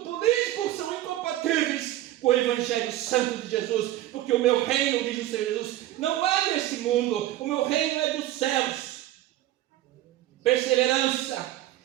político são incompatíveis com o Evangelho Santo de Jesus, porque o meu reino, diz o Senhor Jesus, não é desse mundo, o meu reino é dos céus. Perseverança,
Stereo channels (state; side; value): quieter; left; 14.3 dB